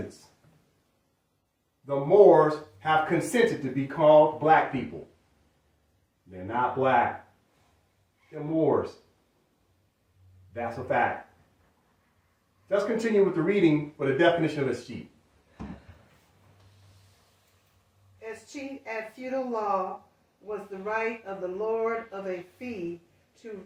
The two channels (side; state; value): both; identical; correlation 1.00